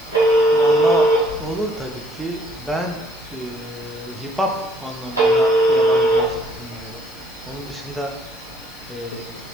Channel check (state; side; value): noise; left; hiss, 24 dB below the sound